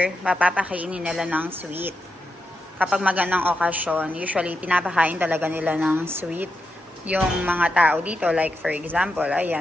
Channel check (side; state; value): both; normal; correlation 0.87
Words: mapapakainin nila ng sweet. Kapag magandang okasyon, usually pinapakain talaga nila ng sweet yung mga tao dito. Like, for example,